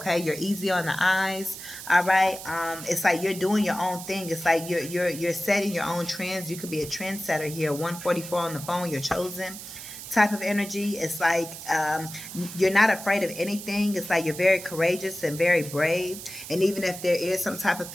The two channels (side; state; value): right; noise; hiss, 11 dB below the sound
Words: you're easy on the eyes. All right, it's like you're doing your own thing. It's like you're setting your own trends. You could be a trendsetter here. 144 on the phone. You're chosen. Type of energy. It's like you're not afraid of anything. It's like you're very courageous and very brave. And even if there is some type of